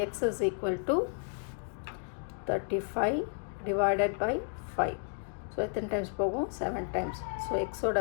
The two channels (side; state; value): right; silent; digital silence